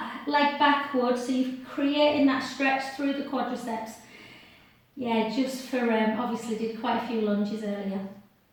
leg backwards so you're creating that stretch through the quadriceps. Yeah, just for, obviously did quite a few lunges earlier.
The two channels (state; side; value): identical; both; correlation 1.00